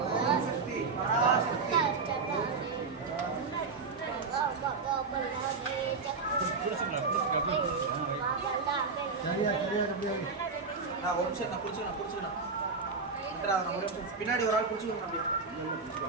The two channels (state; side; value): quieter; left; 4.5 dB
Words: ओम शक्ति पराशक्ति நான் ஒரு நிமிஷம் நான் குடிச்சுக்கணும் நம்ம ஒரு நிமிஷம் பின்னாடி ஒரு ஆள் குடிச்சுக்கணும் அப்படியே